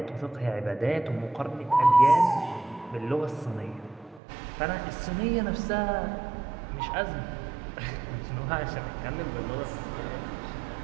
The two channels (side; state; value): left; drops out; at 4.2 s